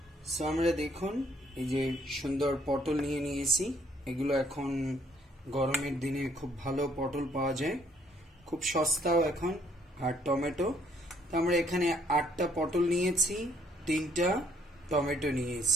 সো আমরা দেখুন এই যে সুন্দর পটল নিয়ে নিয়েছি, এগুলো এখন গরমের দিনে খুব ভালো পটল পাওয়া যায়, খুব সস্তাও এখন। আর টমেটো, তো আমরা এখানে 8টা পটল নিয়েছি, 3টা টমেটো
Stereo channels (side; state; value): both; normal; correlation 0.66